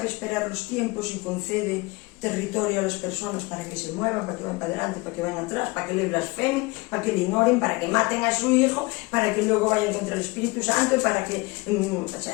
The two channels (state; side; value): quieter; right; 24.3 dB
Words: esperar los tiempos y concede territorio a las personas para que se muevan, para que vayan para adelante, para que vayan atrás, para que le blasfemen, para que le ignoren, para que maten a su hijo, para que luego vayan contra el Espíritu Santo, para que